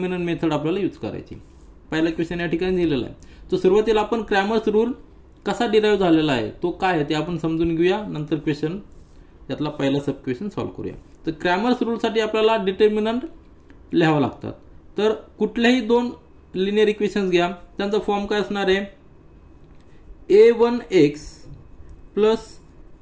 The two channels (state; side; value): identical; both; correlation 1.00